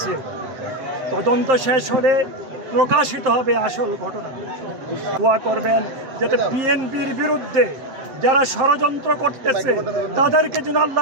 তদন্ত শেষ হলে প্রকাশিত হবে আসল ঘটনা। দোয়া করবেন যাতে বিএনপির বিরুদ্ধে যারা ষড়যন্ত্র করতেছে তাদেরকে যেন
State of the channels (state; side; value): late; left; 7.7 ms